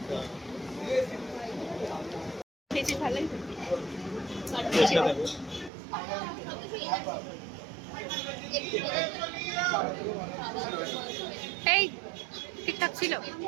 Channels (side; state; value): left; drops out; at 5.7 s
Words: খেয়েছি ভালোই। এই ঠিকঠাক ছিল,